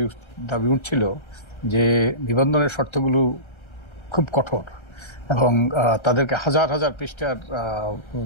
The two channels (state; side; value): late; right; 1.3 ms